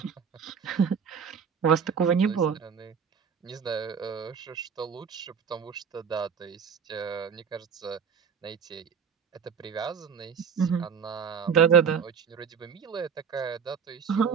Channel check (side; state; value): left; quieter; 6.8 dB